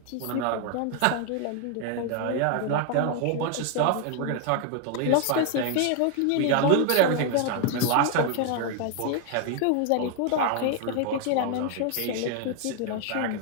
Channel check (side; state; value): both; different; correlation 0.00